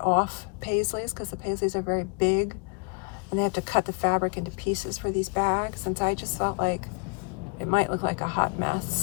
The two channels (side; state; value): right; quieter; 35.5 dB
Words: off paisleys, because the paisleys are very big, and they have to cut the fabric into pieces for these bags. And so I just felt like it might look like a hot